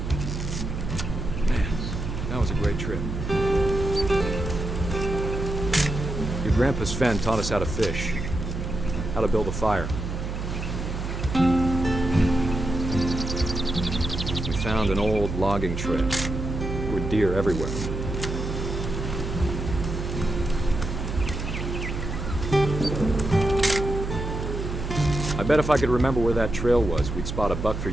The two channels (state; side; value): noise; right; hum, 5 dB below the sound